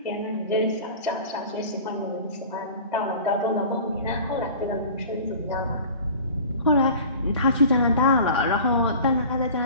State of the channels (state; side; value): inverted; both; correlation -0.41